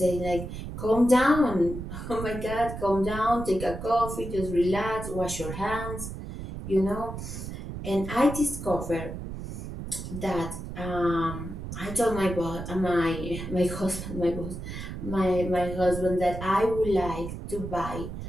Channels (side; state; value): right; noise; rumble, 8 dB below the sound